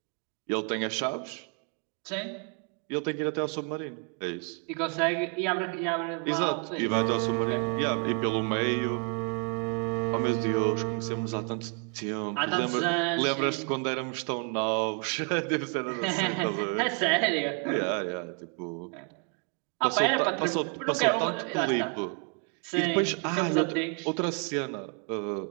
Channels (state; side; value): quieter; left; 38.8 dB